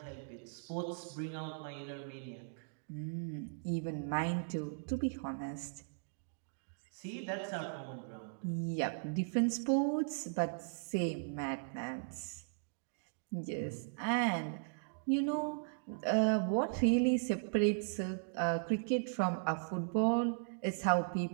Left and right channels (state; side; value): silent; left; digital silence